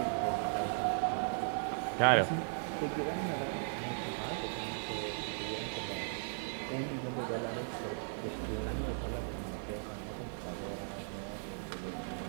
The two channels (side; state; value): left; silent; digital silence